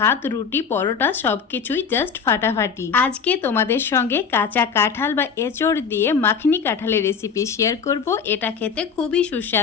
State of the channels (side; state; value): right; quieter; 6.3 dB